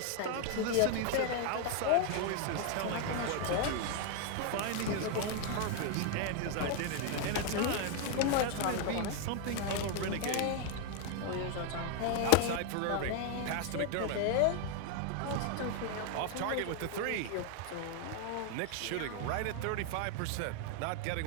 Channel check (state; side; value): different; both; correlation 0.01